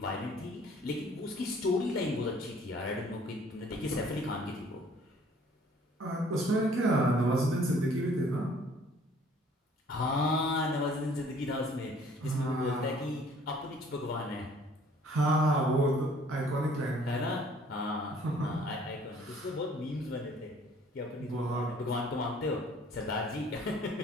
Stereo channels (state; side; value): normal; both; correlation 0.56